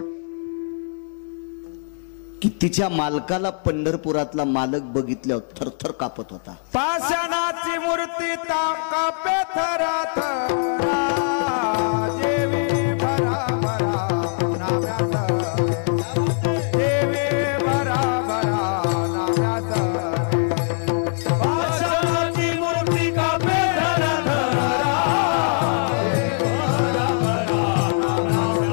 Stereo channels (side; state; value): right; silent; 64 dB below the other